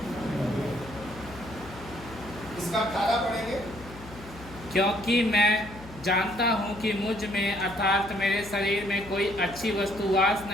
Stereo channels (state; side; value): noise; left; hum, 16 dB below the sound